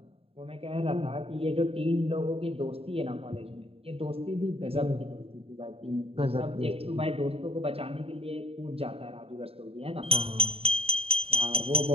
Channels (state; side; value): late; left; 0.28 ms